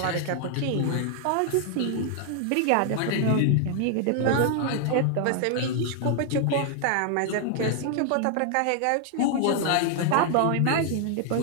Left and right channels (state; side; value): different; both; correlation 0.00